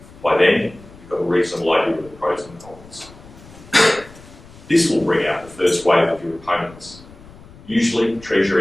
By then, you've got a reasonable idea of the pros and cons. This will bring out the first wave of your opponents, usually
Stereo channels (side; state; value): left; noise; rumble, 21 dB below the sound